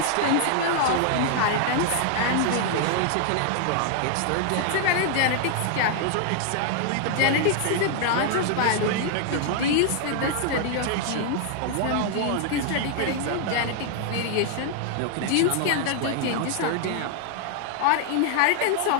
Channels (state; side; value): different; both; correlation 0.00